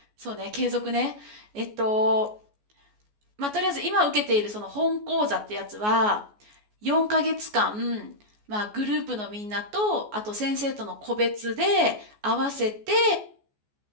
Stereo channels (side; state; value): left; late; 14 ms